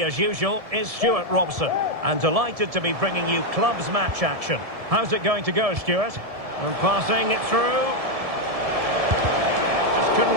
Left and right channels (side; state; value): left; late; 1.7 ms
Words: as usual, is Stuart Robson. And delighted to be bringing you clubs match action. How's it going to go, Stuart? And passing it through. Just